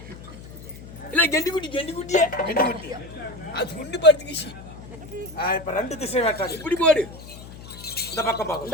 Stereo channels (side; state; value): left; noise; hum, 15 dB below the sound